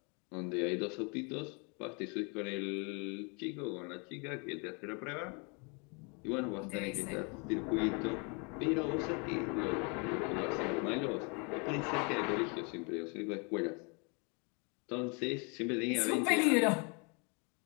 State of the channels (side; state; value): right; quieter; 33.3 dB